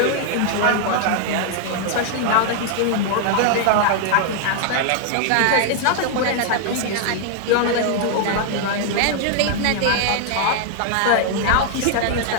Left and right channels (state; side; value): different; both; correlation 0.00